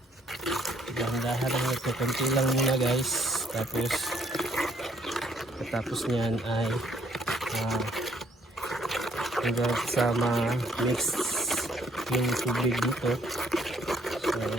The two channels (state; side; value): normal; both; correlation 0.66